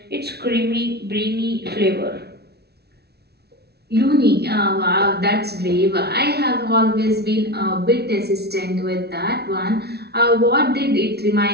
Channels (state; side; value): late; left; 0.47 ms